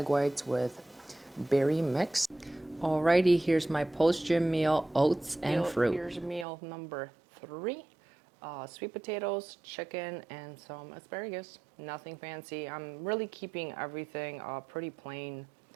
whites with berry mix. Alrighty, here's my post-gym meal, oats and fruit. Here's meal number three, sweet potatoes, chicken, and some asparagus. Nothing fancy. I'm really keeping everything pretty plain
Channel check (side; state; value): left; drops out; at 6.5 s